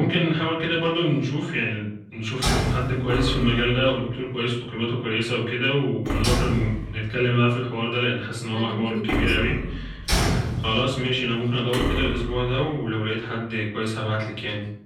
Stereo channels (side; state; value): both; identical; correlation 1.00